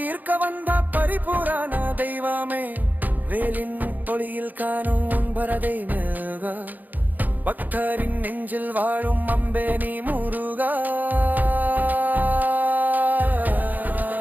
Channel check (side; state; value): left; late; 0.083 ms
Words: வந்த பரிபூரண தெய்வமே வேலின் ஒளியில் காணும் உன்பரதை முருகா பக்தரின் நெஞ்சில் வாழும் அம்பே நீ முருகா